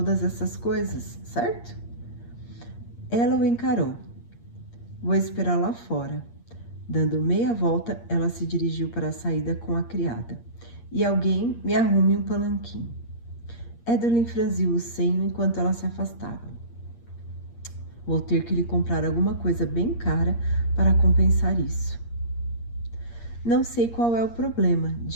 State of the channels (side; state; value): right; late; 8.6 ms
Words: essas coisas, certo? Ela o encarou. Vou esperar lá fora. Dando meia volta, ela se dirigiu para a saída com a criada. E alguém me arrume um palanquim. Edelyn franziu o senho enquanto ela se afastava. Vou ter que lhe comprar alguma coisa bem cara para compensar isso. Não sei qual é o problema,